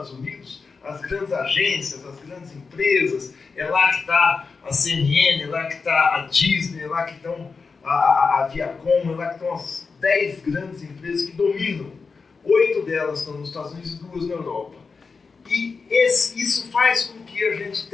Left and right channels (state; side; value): quieter; right; 4.8 dB